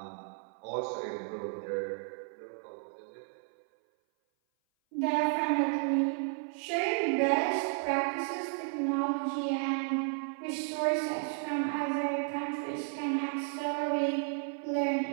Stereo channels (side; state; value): left; silent; 56 dB below the other